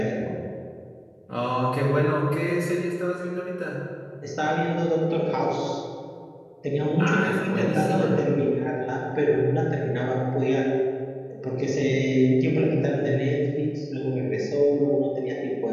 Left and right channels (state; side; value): identical; both; correlation 1.00